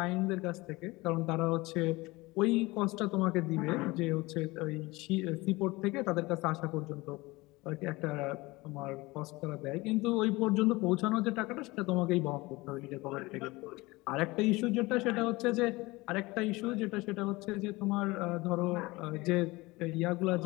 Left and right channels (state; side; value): quieter; right; 21.9 dB